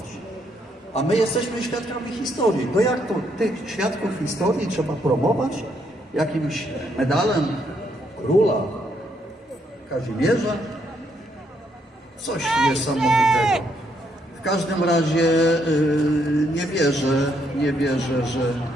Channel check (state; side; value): normal; both; correlation 0.74